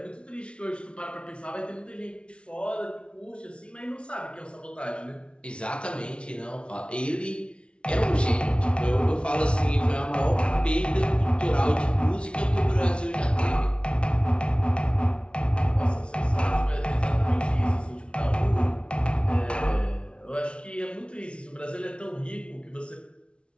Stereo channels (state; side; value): late; right; 0.058 ms